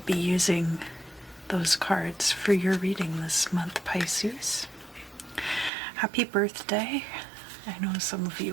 be using those cards for your reading this month, Pisces. Happy birthday. I know some of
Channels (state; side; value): drops out; left; at 5.7 s